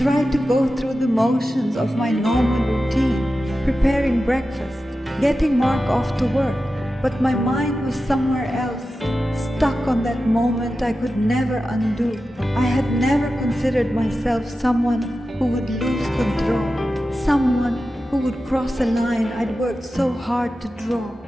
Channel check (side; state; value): both; normal; correlation 0.93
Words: to go through the motions of my normal routine, preparing breakfast, getting Mark off to work, but my mind was somewhere else, stuck on that moment I could never undo. I had never considered myself someone who would lose control, someone who would cross a line I'd worked so hard to draw.